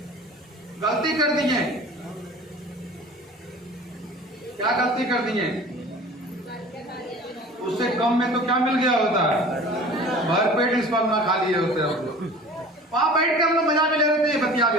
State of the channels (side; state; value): both; normal; correlation 0.42